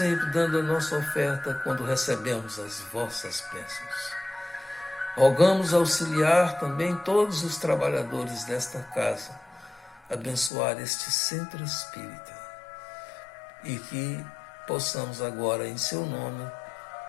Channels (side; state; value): right; drops out; at 10.5 s